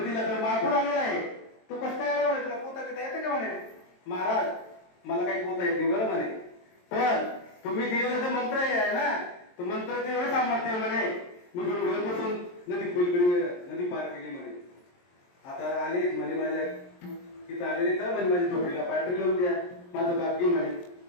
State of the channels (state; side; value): late; right; 23 ms